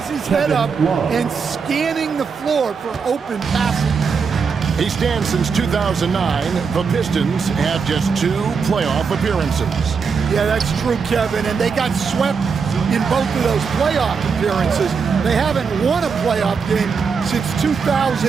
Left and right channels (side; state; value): left; quieter; 5.6 dB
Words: his head up and scanning the floor for open passing. He stands since 2009. The Pistons have just 2 playoff appearances. Yeah, that's true, Kevin, and they got swept in both of those playoff appearances. They haven't won a playoff game since